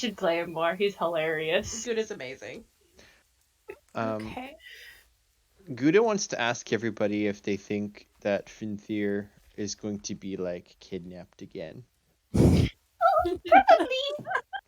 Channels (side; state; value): both; identical; correlation 1.00